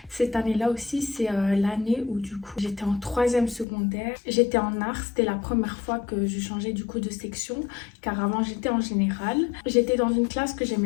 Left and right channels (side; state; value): right; drops out; at 3.7 s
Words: cette année-là aussi, c'est l'année où du coup, j'étais en 3e secondaire. J'étais en art. C'était la première fois que je changeais du coup de section car avant, j'étais en général. J'étais dans une classe que